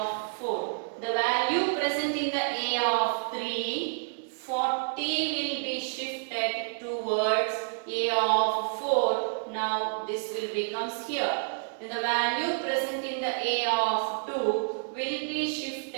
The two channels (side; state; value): left; silent; digital silence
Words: 4. The value present in the A of 3, 40 will be shifted towards A of 4. Now this will becomes here. And the value present in the A of 2 will be